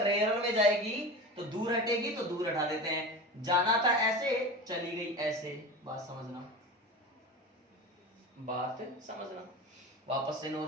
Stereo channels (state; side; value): normal; both; correlation 0.30